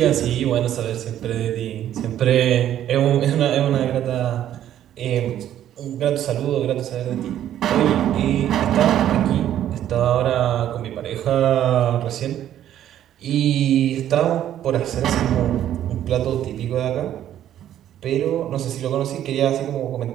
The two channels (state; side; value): quieter; left; 11.4 dB